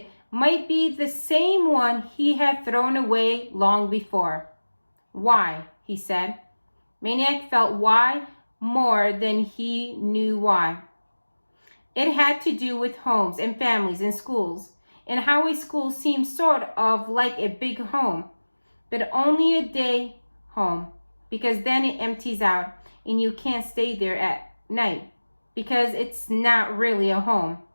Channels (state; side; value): inverted; both; correlation -1.00